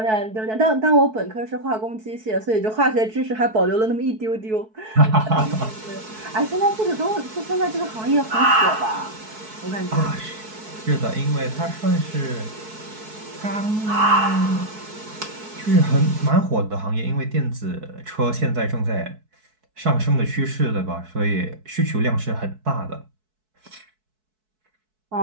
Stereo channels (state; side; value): late; left; 4.6 ms